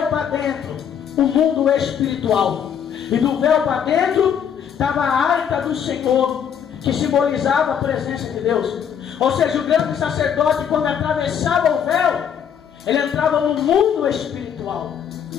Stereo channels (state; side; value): quieter; right; 8.2 dB